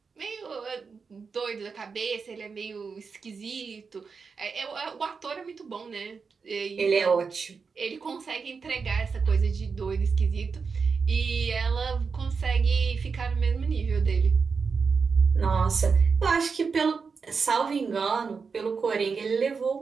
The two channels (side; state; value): left; quieter; 5.2 dB